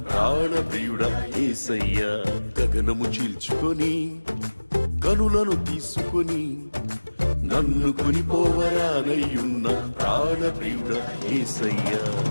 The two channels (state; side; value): inverted; both; correlation -1.00